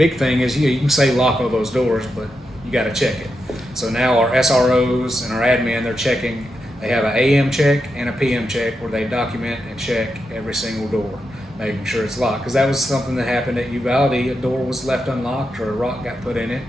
thing is, you can say lock all those doors, but you got to check it. So now our SROs and our admin, they're checking. They have an AM check and a PM check where they document and check every single door, making sure it's locked. Because that was something that happened at Uvalde. A door was left unlocked or a rock got put in it,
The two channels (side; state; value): both; normal; correlation 0.86